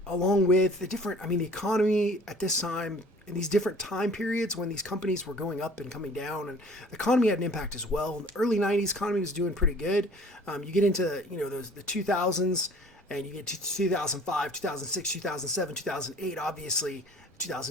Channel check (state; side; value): normal; both; correlation 0.50